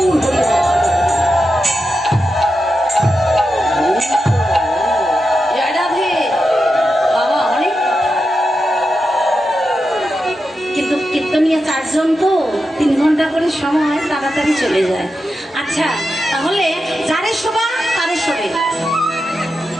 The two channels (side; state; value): both; normal; correlation 0.88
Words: হরি বল। জয় রাধে বাবা। অনেক কিন্তু কীর্তনিয়া চারজন তো 3 ঘন্টা করে সময় তাড়াতাড়ি চলে যায়। আচ্ছা, তাহলে যারে শোভা তারে শোভে,